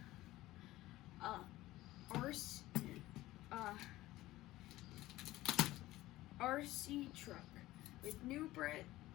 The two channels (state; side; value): quieter; right; 16.9 dB